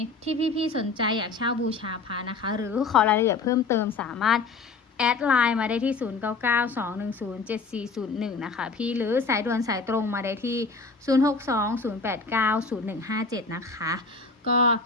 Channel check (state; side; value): quieter; right; 4.1 dB